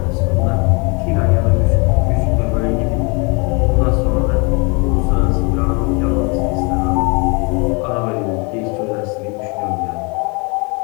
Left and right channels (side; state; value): right; quieter; 31.8 dB